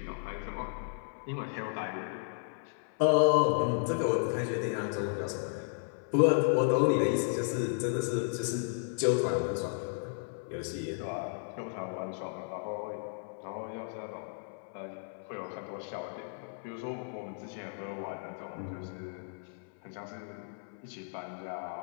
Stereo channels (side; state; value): right; silent; 55 dB below the other